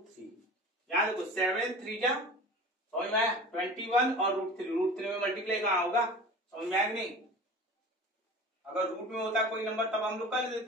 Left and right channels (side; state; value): both; normal; correlation 0.38